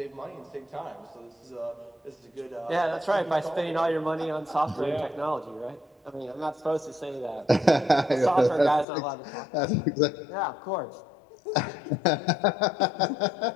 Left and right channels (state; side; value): drops out; right; at 8.8 s